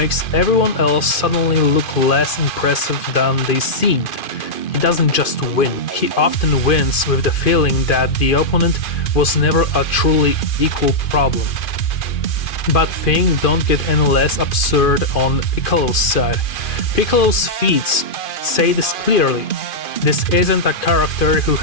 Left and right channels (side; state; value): right; late; 2.5 ms